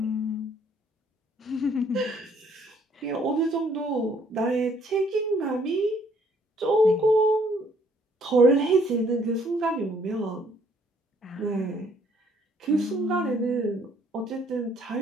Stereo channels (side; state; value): both; normal; correlation 0.64